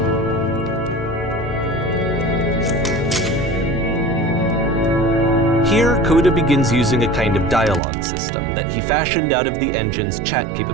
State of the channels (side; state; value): left; drops out; at 7.8 s